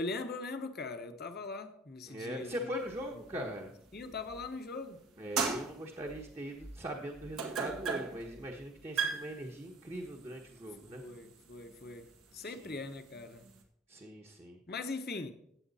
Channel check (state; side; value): normal; both; correlation 0.45